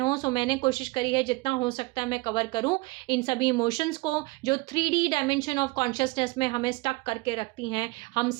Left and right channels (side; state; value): left; quieter; 24.0 dB